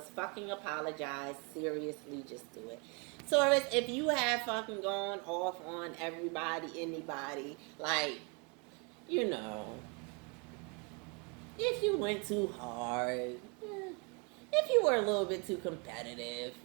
fucking apologize. Seriously, just do it. Taurus, if you have fucking gone off on everybody, anybody, like, you know, if you went too hard, if you were a little bit too competitive,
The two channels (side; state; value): left; quieter; 33.3 dB